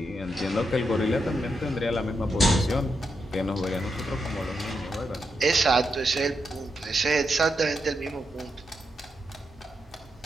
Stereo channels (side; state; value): both; normal; correlation 0.83